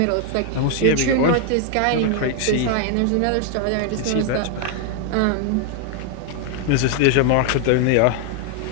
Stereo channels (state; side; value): different; both; correlation 0.00